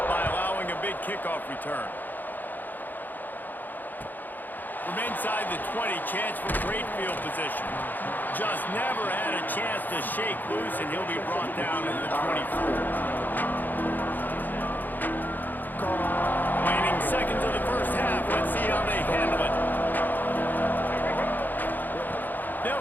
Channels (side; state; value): right; late; 0.087 ms